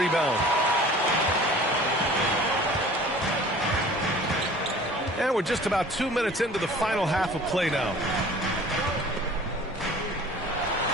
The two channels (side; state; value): both; normal; correlation 0.46